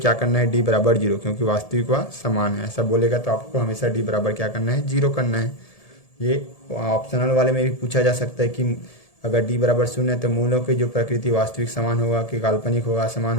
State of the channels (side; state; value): right; late; 1.7 ms